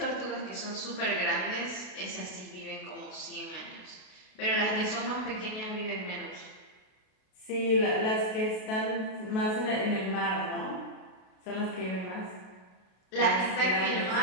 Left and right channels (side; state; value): right; late; 32 ms